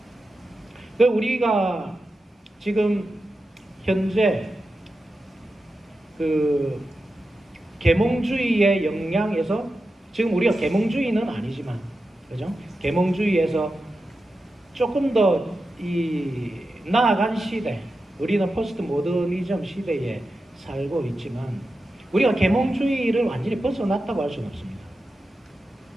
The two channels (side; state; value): both; normal; correlation 0.91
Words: 그 우리가 지금 현재 그 계몽주의의 영향에서 지금 우리가 계몽주의는 아니지만 그죠? 계몽주의에서 조금 더 이 나아간 시대, 우리는 포스트 모더니즘 시대에 살고 있지만 우리가 계몽주의를 완전히 벗어났다고 할 수는 없습니다.